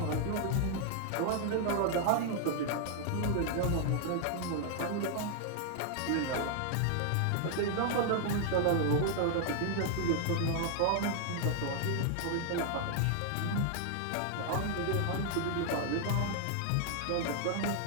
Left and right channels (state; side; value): different; both; correlation 0.00